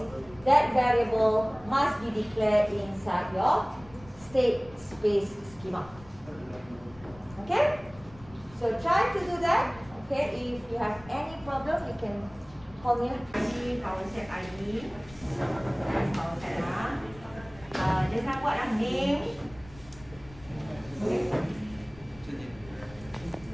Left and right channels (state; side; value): noise; left; rumble, 21 dB below the sound